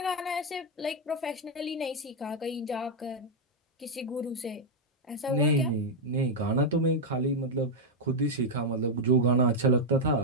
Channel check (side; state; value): both; normal; correlation -0.01